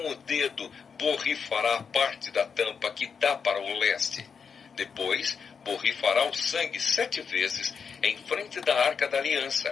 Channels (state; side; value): quieter; right; 6.1 dB